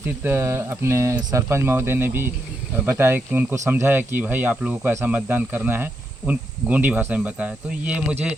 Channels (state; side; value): normal; both; correlation 0.82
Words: अपने सरपंच महोदय ने भी बताया कि उनको समझाया कि भाई आप लोगों को ऐसा मतदान करना है, उन गोंडी भाषा में बताया। तो ये मुझे